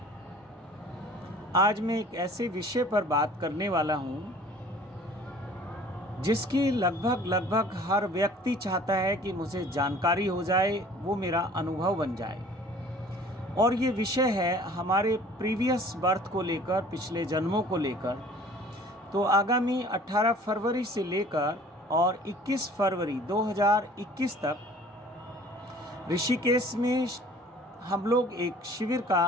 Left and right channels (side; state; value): both; normal; correlation 0.50